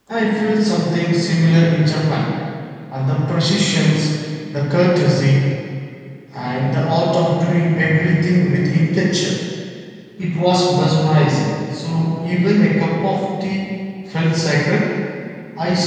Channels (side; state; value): both; identical; correlation 1.00